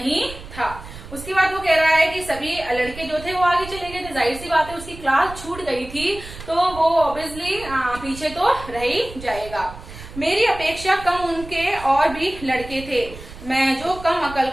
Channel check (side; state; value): right; noise; rumble, 14 dB below the sound